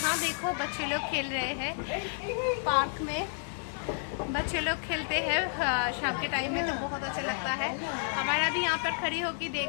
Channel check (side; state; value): right; silent; digital silence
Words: देखो बच्चे लोग खेल रहे हैं पार्क में। बच्चे लोग खेलते हैं शाम के टाइम में, तो बहुत अच्छा लगता है। हमारा भी यहाँ पर खड़ी होकर